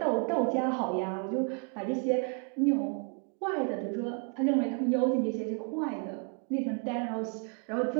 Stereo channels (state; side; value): quieter; left; 39.9 dB